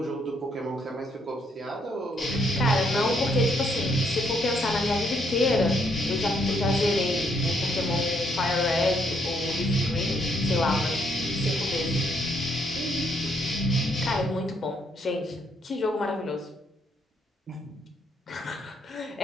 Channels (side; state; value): both; normal; correlation 0.72